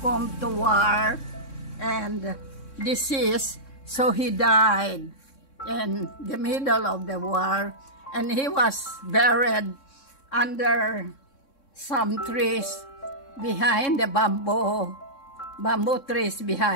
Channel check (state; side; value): late; right; 3.6 ms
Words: to war and disease, so he died in the middle of the war, and he was buried under some trees behind the bamboo trees